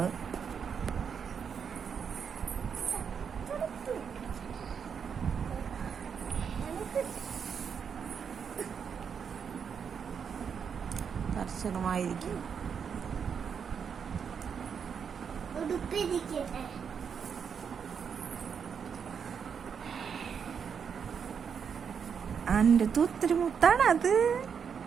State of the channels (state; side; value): quieter; left; 6.9 dB